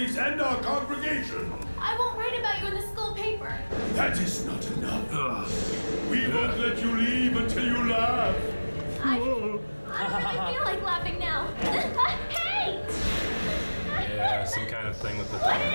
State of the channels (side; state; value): both; inverted; correlation -1.00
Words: and our congregation. I won't write about you in the school paper. That is not enough. We won't let you leave until you laugh. I don't really feel like laughing now. Hey! Yeah, some kind of thing with the What is